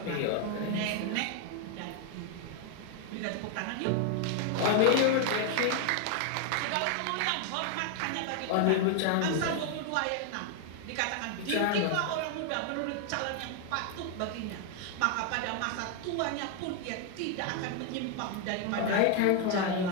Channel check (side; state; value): both; different; correlation 0.00